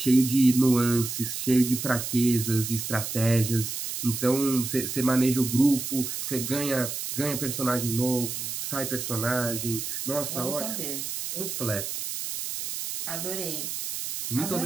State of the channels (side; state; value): right; noise; hiss, 5 dB below the sound